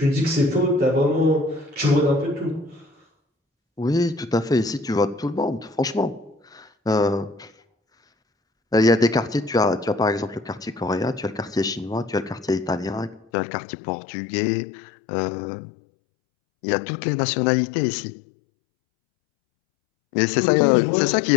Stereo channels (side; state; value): right; drops out; at 13.2 s